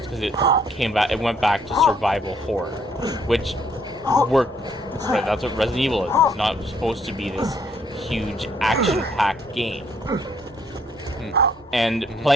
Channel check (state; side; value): normal; both; correlation 0.67